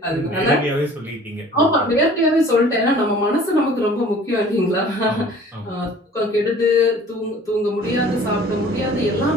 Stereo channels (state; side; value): normal; both; correlation 0.49